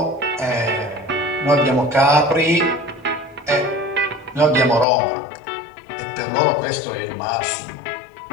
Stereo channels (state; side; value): drops out; right; at 4.9 s